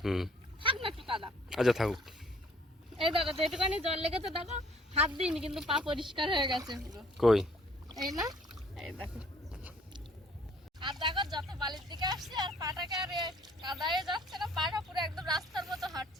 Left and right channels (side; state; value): both; normal; correlation 0.59